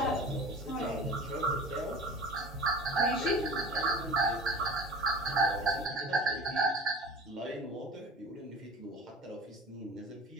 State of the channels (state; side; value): normal; both; correlation 0.39